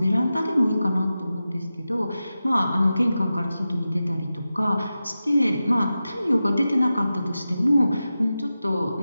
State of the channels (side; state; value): both; inverted; correlation -0.93